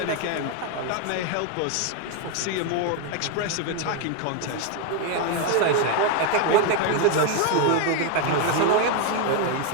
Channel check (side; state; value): both; different; correlation 0.01